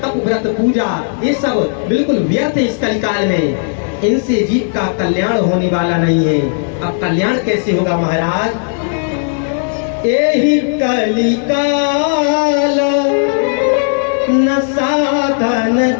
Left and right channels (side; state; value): right; silent; digital silence